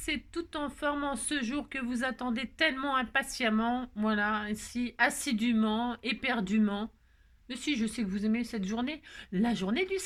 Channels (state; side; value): identical; both; correlation 1.00